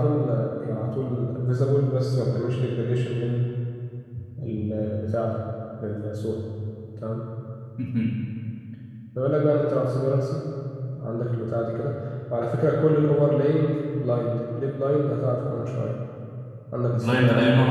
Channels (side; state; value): both; identical; correlation 1.00